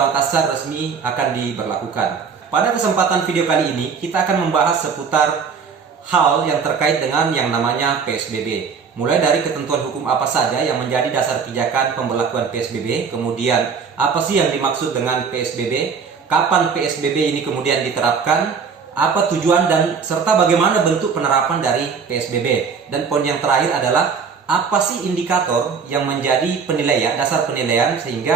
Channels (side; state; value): left; quieter; 5.9 dB